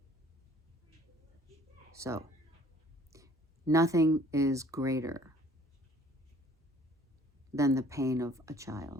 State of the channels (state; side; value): normal; both; correlation 0.56